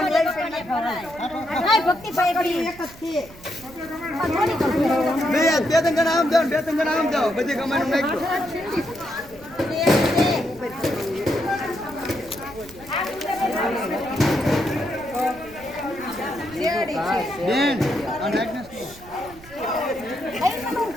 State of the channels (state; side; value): noise; right; rumble, 21 dB below the sound